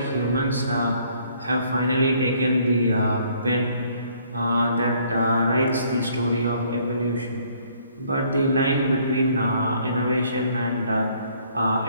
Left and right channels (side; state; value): both; inverted; correlation -0.63